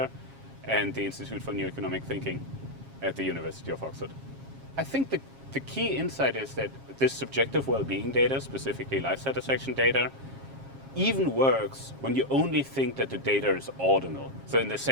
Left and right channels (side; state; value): left; late; 7.4 ms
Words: and the Institute for New Economic Thinking at the University of Oxford. I think the key insight is that this subjective well-being data, specifically life satisfaction data, even works when you only think that the data is ordinal. So in the